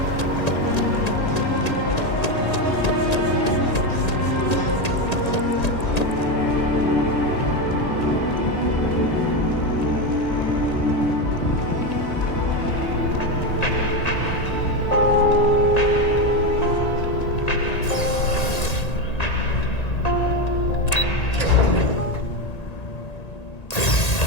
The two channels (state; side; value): late; right; 1.9 ms